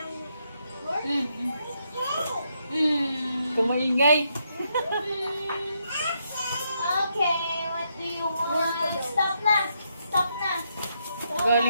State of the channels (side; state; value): both; inverted; correlation -0.78